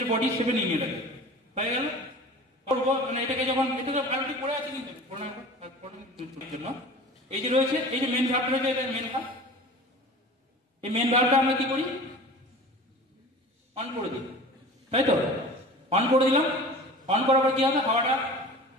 বডি শেপে নিয়ে নিয়ে লাগে, হয়ে গেল। করবো মানে এটাকে যখন এটাকে আলটি পড়ে আছে কিন্তু জন্য এই যে রয়েছে, এই যে মেন ভার্ব রয়েছে, এটা মেন ভার্ব। এই মেন ভার্বটা আমরা কি করি, অন করে দিই, তাই তো। অন করে দিলাম, অন করার পর কি হবে, হাওয়াটা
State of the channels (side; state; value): both; normal; correlation 0.39